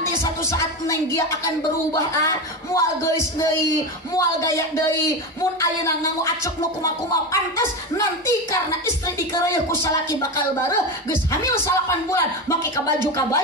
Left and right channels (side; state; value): both; normal; correlation 0.18